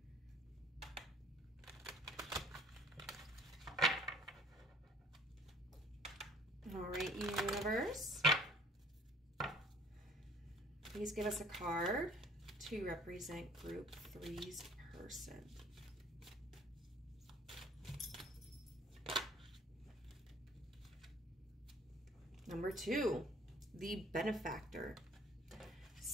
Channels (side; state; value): both; normal; correlation 0.55